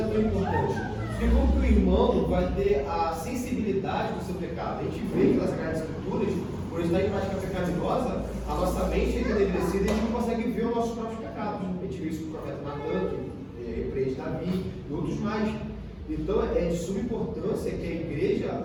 tão importante. Porque como que o irmão vai ter a sensibilidade do seu pecado? A gente vê que nas Sagradas Escrituras, por estar em prática pecaminosa, a nossa mente é enegrecida e a gente não consegue ver os nossos próprios pecados. A gente vê isso no profeta Natan, que repreende Davi e outros mais. Então é de suma importância que a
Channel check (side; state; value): both; identical; correlation 1.00